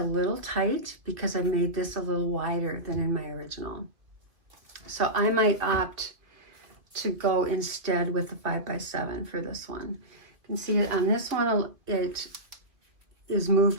tight because I made this a little wider than in my original. So I might opt to go instead with the 5x7 for this one. You can see it on this one, it is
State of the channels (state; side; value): late; left; 2.3 ms